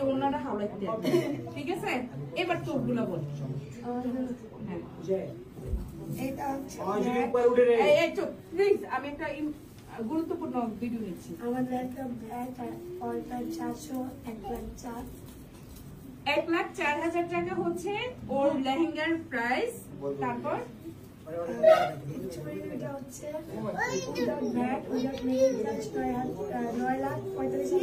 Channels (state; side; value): identical; both; correlation 1.00